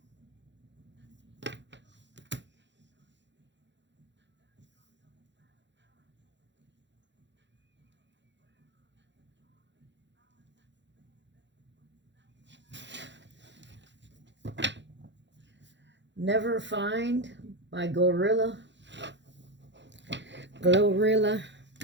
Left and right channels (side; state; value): left; late; 0.52 ms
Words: Never Find by Glorilla.